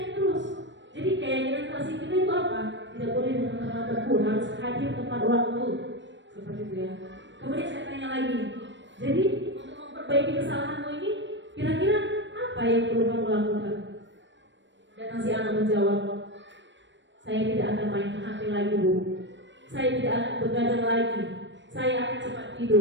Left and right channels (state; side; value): late; left; 0.53 ms